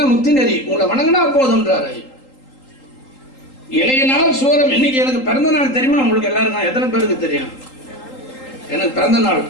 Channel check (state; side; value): late; right; 3.8 ms